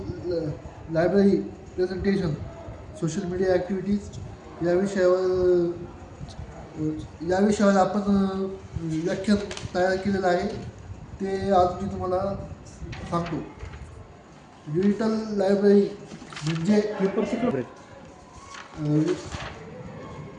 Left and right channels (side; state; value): both; identical; correlation 1.00